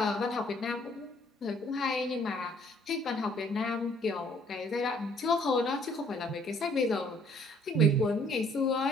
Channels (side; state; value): both; normal; correlation 0.61